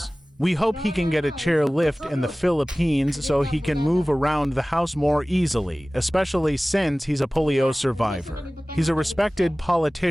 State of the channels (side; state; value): both; normal; correlation 0.98